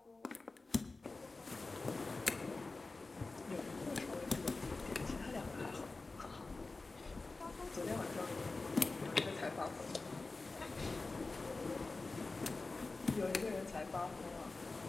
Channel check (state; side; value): quieter; right; 3.6 dB